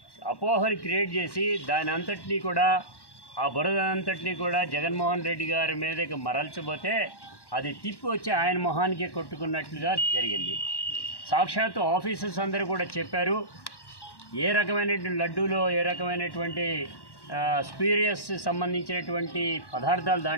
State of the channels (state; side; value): late; right; 1.1 ms